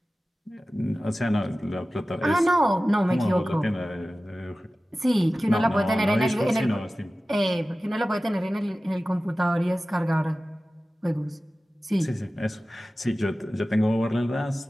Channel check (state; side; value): normal; both; correlation 0.96